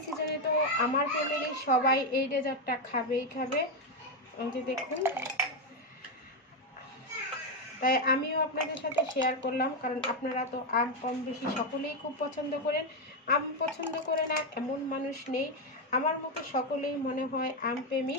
সিজনে তো আমার ফ্যামিলির সবাই এই ডেজার্টটা খাবেই খাবে। এই যে দেখুন, তাই আমিও আপনাদের সাথে শেয়ার করলাম, কারণ আপনারা তো আম কম বেশি সকলেই খুব পছন্দ করেন। আম পছন্দ করে না এমন মানুষ নেই। আমার মতো সকলেই মনে হয় আম প্রেমী।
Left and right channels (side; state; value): both; normal; correlation 0.06